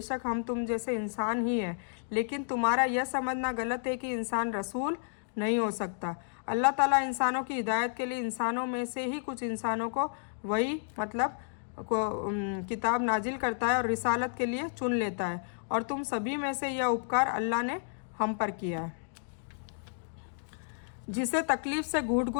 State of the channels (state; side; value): silent; right; digital silence